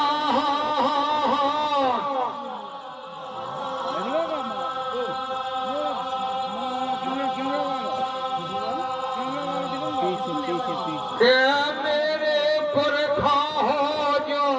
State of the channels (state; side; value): identical; both; correlation 1.00